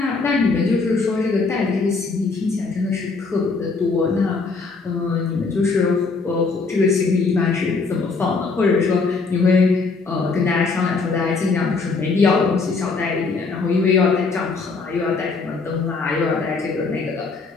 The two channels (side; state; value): right; quieter; 4.2 dB